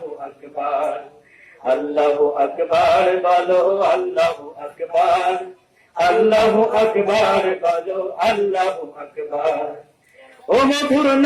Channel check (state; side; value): identical; both; correlation 1.00